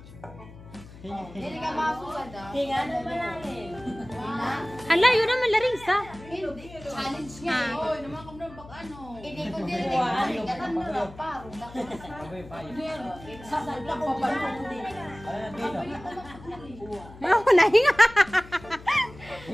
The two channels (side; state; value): left; noise; hum, 18 dB below the sound